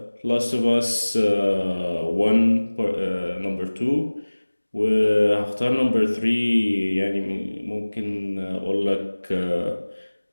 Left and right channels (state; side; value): inverted; both; correlation -1.00